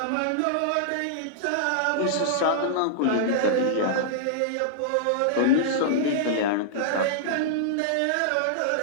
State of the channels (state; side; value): different; both; correlation -0.02